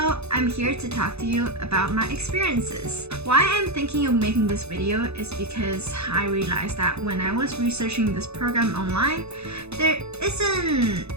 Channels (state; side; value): late; left; 0.80 ms